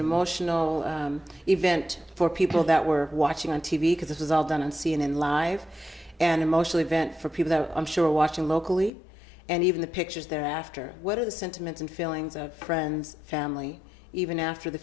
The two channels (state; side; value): drops out; right; at 8.9 s